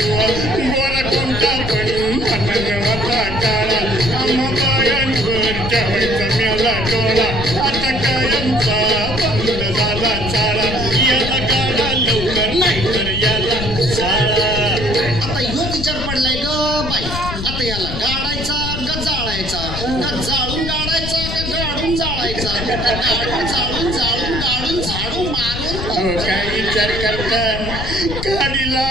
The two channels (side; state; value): left; noise; rumble, 5 dB below the sound